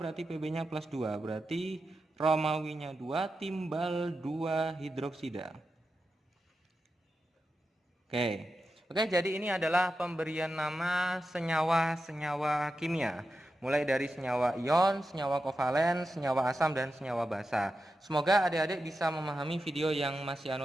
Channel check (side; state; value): both; normal; correlation 0.90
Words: Pb-nya +2. Berarti Romawinya 2, timbal 2 hidroksida. Oke, jadi ini adalah pemberian nama senyawa-senyawa kimia. Mulai dari senyawa ion, senyawa kovalen, senyawa asam, dan senyawa basa. Semoga adik-adik bisa memahami video yang Mas